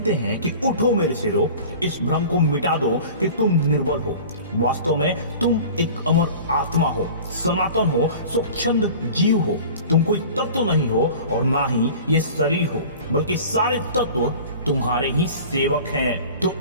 हैं कि उठो मेरे सिरो, इस भ्रम को मिटा दो कि तुम निर्बल हो। वास्तव में तुम एक अमर आत्मा हो, सनातन हो, स्वच्छंद जीव हो। तुम कोई तत्व नहीं हो और ना ही ये शरीर हो, बल्कि सारे तत्व तुम्हारे ही सेवक हैं। तो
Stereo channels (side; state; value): both; inverted; correlation -0.40